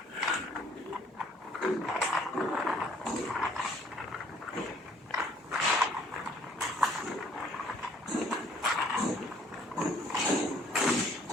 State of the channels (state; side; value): normal; both; correlation 0.61